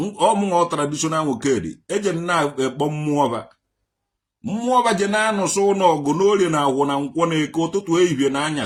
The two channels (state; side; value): identical; both; correlation 1.00